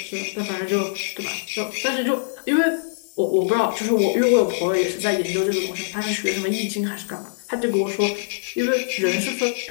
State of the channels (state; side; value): silent; right; digital silence